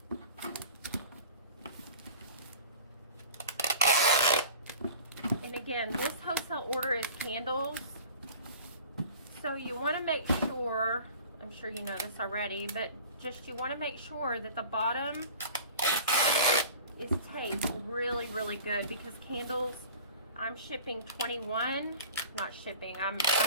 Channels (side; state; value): both; inverted; correlation -0.43